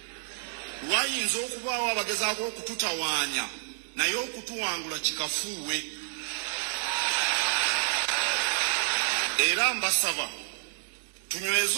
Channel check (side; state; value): left; silent; 58 dB below the other